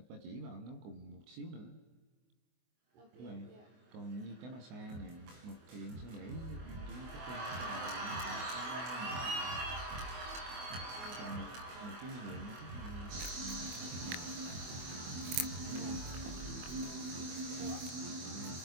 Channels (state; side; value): late; left; 24 ms